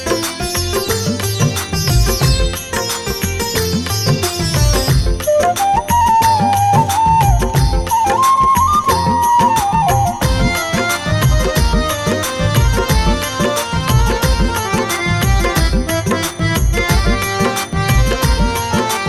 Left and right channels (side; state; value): both; identical; correlation 1.00